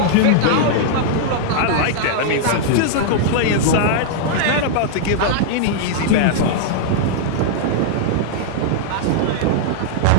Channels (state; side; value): different; both; correlation -0.01